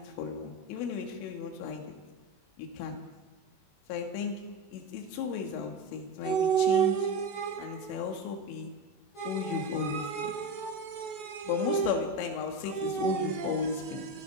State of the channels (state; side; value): late; right; 21 ms